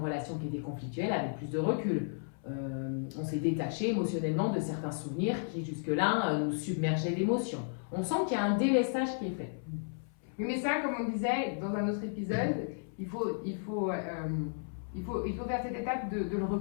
qui étaient conflictuelles avec plus de recul. On s'est détaché émotionnellement de certains souvenirs qui jusque-là nous submergeaient d'émotions. On sent qu'il y a un délestage qui est fait. Mais ça, comme on disait dans un autre épisode, il faut faire cette étape de le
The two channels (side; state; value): right; silent; 55 dB below the other